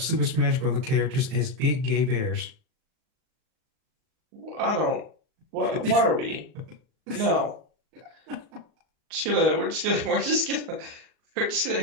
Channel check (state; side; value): late; left; 39 ms